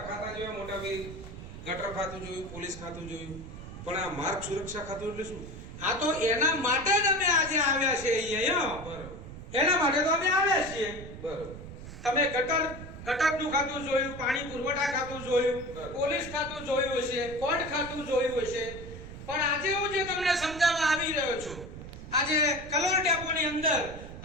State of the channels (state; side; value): noise; right; rumble, 12 dB below the sound